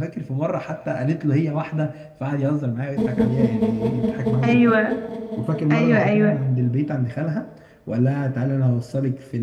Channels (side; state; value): both; identical; correlation 1.00